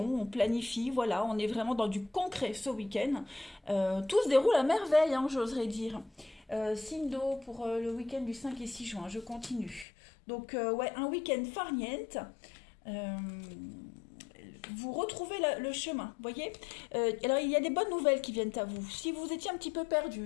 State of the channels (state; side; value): drops out; right; at 9.9 s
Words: on planifie. Voilà, on est vraiment dans du concret ce week-end. Tout se déroule à merveille, j'oserais dire. Signe d'eau pour le week-end du 5 et 6 juin. Je continue. Donc, un week-end farniente. Vous retrouvez le chemin, voyez. Alors, il y a des bonnes nouvelles qui viennent à vous. Si vous étiez un petit peu